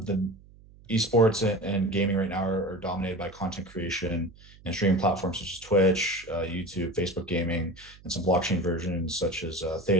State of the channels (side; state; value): right; noise; hum, 24 dB below the sound